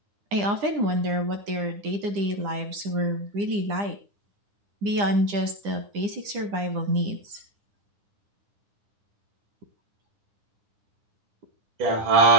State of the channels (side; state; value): left; late; 9.9 ms